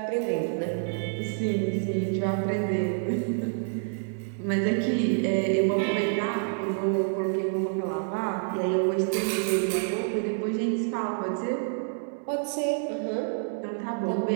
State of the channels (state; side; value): silent; left; digital silence